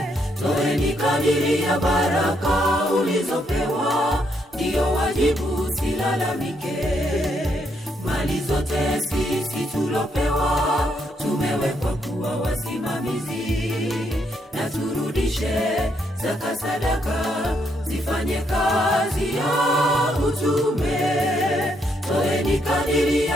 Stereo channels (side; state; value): both; normal; correlation 0.75